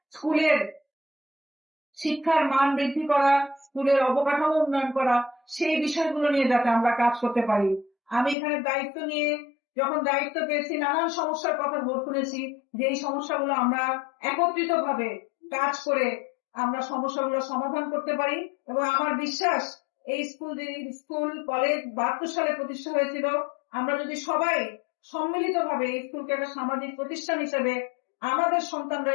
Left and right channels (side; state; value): right; drops out; at 8.3 s